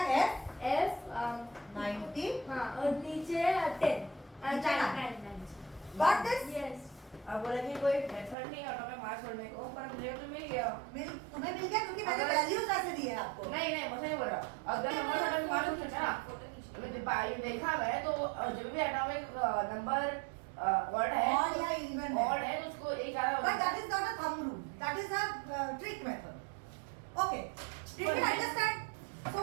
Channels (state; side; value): drops out; left; at 8.3 s